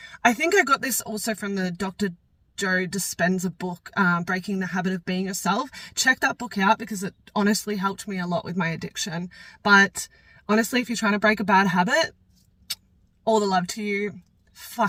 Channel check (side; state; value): both; identical; correlation 1.00